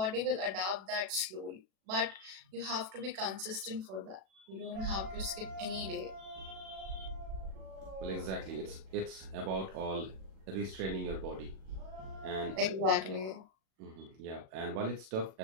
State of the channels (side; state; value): left; late; 37 ms